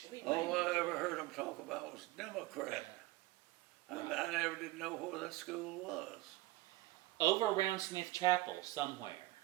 We All made- I ever heard them talk about was Democrat. I never did know where that school was. Over around Smith Chapel somewhere.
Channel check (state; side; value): quieter; left; 17.9 dB